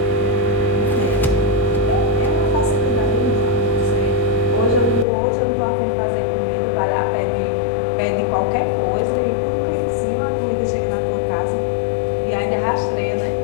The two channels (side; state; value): right; drops out; at 5.1 s